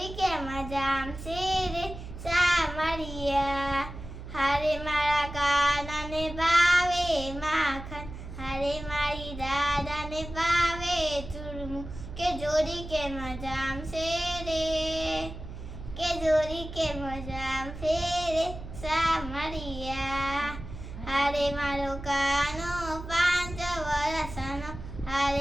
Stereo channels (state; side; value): noise; right; hum, 11 dB below the sound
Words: કેમ જામશે રે સામરિયા. હારે મારા કાનાને ભાવે માખણ, હારે મારી દાદાને ભાવે ચૂરમું, કે જોડી કેમ જામશે રે, કે જોડી કેમ જામશે રે સામરિયા. હારે મારો કાનો 5 વર્ષનો,